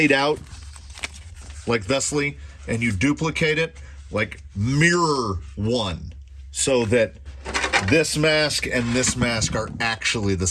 out, like thusly, and you duplicate it, mirror one, so that this mask and this mask are actually the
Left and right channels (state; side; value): identical; both; correlation 1.00